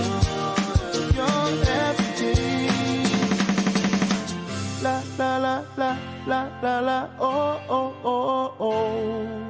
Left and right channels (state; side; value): identical; both; correlation 1.00